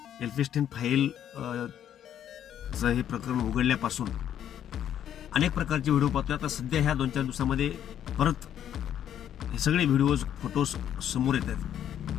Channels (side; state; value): right; quieter; 10.1 dB